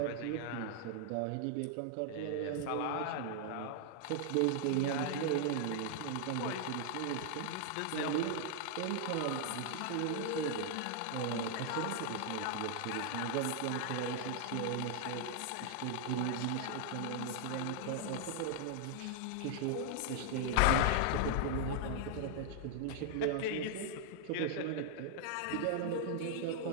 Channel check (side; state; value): both; different; correlation 0.00